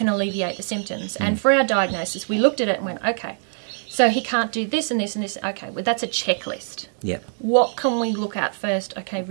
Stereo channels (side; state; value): left; silent; digital silence